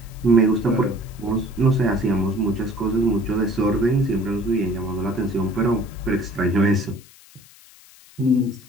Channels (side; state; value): left; noise; hiss, 24 dB below the sound